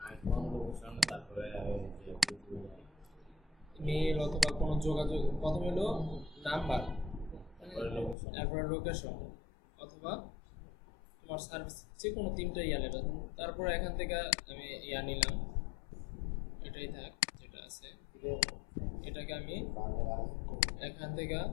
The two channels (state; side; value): drops out; right; at 8.2 s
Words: আইকন লোকেশন, তারপরে মেল অথবা কোনো যোগাযোগ। প্রথমে হলো নাম্বার, তারপরে লোকেশন অথবা তোমার সার্ভিস, যে কোনো তিনটা ইয়া লেটার। তারপরে এখান থেকে আমি ইয়া নিলাম, এটাই থাক যেটা আছে। এটাকে আমি এখান থেকে